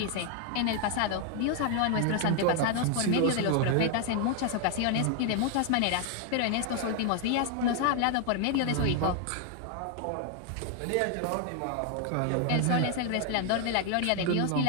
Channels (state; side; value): different; both; correlation 0.00